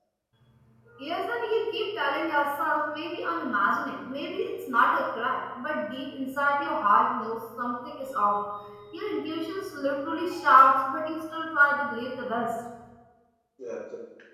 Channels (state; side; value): identical; both; correlation 1.00